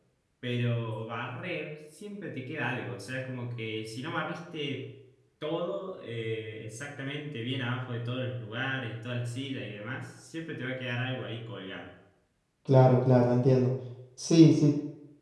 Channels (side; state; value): both; identical; correlation 1.00